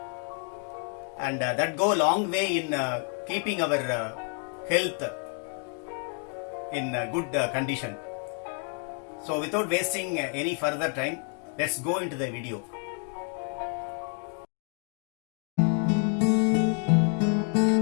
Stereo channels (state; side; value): quieter; right; 39.7 dB